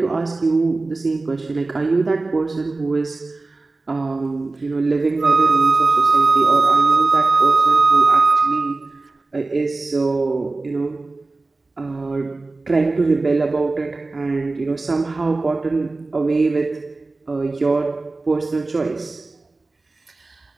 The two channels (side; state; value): left; quieter; 3.4 dB